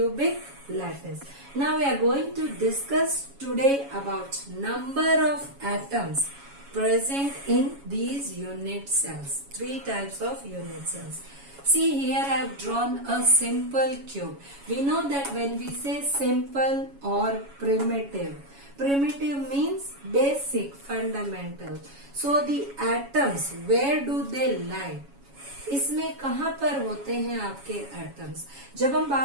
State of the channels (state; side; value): late; left; 7.2 ms